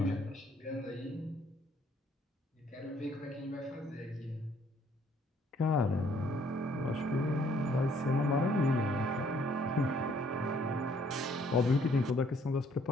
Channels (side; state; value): both; normal; correlation 0.64